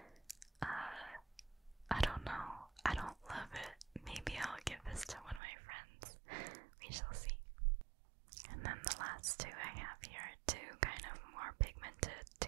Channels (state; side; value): drops out; left; at 5.4 s